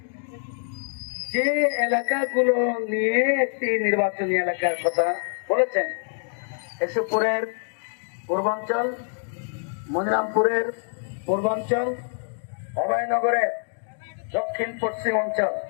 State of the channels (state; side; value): silent; right; digital silence